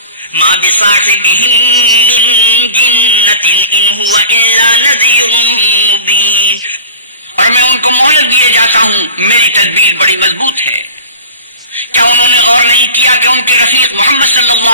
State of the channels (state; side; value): inverted; both; correlation -0.39